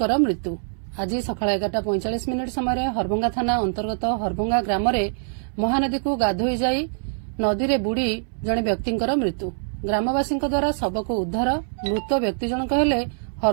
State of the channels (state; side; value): silent; left; 63 dB below the other